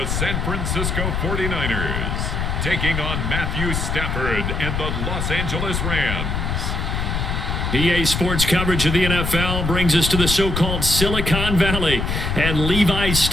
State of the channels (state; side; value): noise; left; rumble, 1 dB below the sound